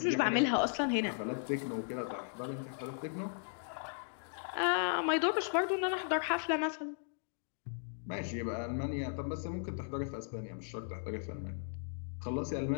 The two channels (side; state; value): right; silent; digital silence